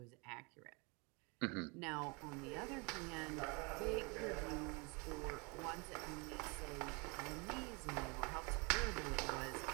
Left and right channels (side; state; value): left; quieter; 30.3 dB